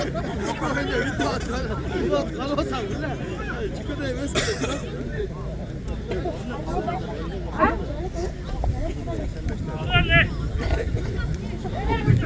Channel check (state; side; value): identical; both; correlation 1.00